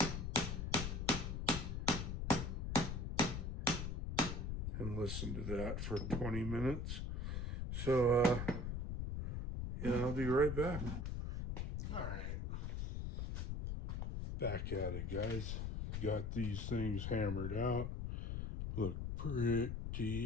and listen to that for 20 minutes. So, yeah, I'll be right back. All right. Back at it, guys. Got these things hammered out. Look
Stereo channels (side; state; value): left; noise; rumble, 2 dB below the sound